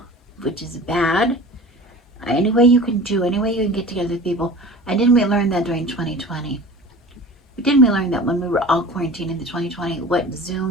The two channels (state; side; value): normal; both; correlation 0.38